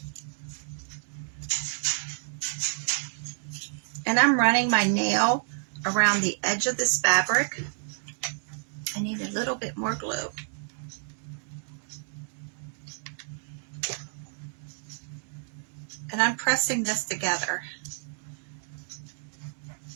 And I'm running my nail around the edge of this fabric. I need a little bit more glue. And I'm pressing this together.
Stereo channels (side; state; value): left; silent; digital silence